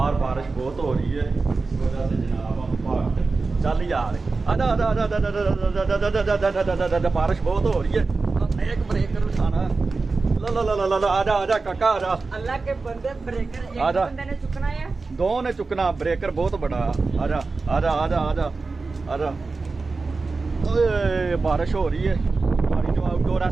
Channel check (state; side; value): quieter; left; 4.0 dB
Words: बारिश बहुत हो रही है इस वजह से जनाब हम भागते चल यार। बारिश बहुत हो रही है, एक ब्रेकर उठाना। ला ला ला ला ला, आजा आजा काका आजा। अल्लाह के बंदे ब्रेकर एक बंदे ने चुकना है, 2 ने चुकना, ब्रेकर बहुत बड़ा। आजा आजा आजा आजा आजा। ओए बारिश हो रही है, हमारी जो आउटडोर